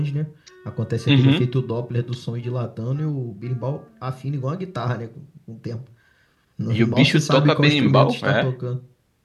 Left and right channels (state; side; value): identical; both; correlation 1.00